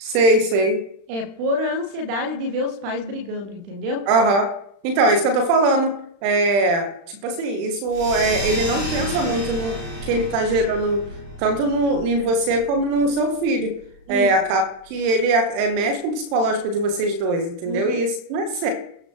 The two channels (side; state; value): left; late; 35 ms